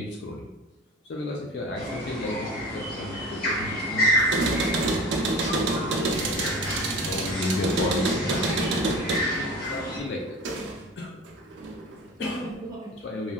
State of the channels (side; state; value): both; normal; correlation 0.36